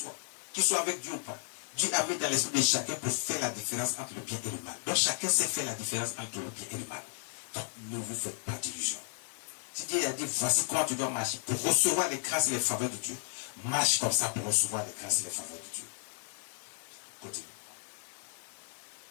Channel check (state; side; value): silent; right; 55 dB below the other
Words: avec Dieu ou pas, Dieu a mis dans l'esprit de chacun pour faire la différence entre le bien et le mal. Donc, chacun sait faire la différence entre le bien et le mal. Donc, ne vous faites pas d'illusions. Si Dieu a dit, voici comment tu dois marcher pour recevoir les grâces et les faveurs de Dieu, marche comme ça pour recevoir les grâces et les faveurs de Dieu. Continue.